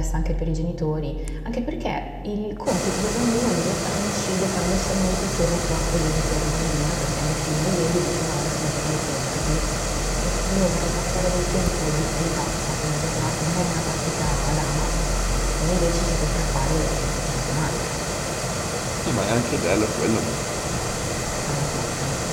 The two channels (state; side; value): identical; both; correlation 1.00